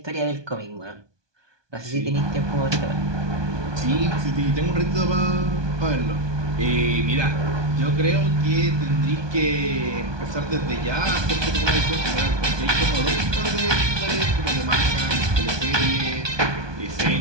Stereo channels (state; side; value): late; left; 1.2 ms